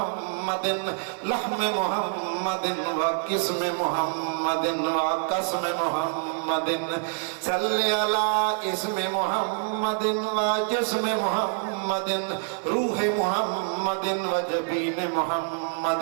لحم محمد وقسم محمد وقسم محمد صل على اسم محمد وجسم محمد روح محمد وجبين محمد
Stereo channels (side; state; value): left; silent; 59 dB below the other